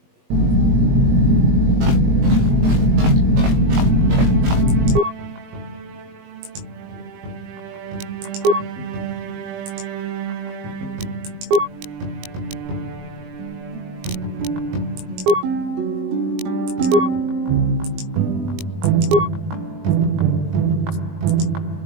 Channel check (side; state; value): left; late; 20 ms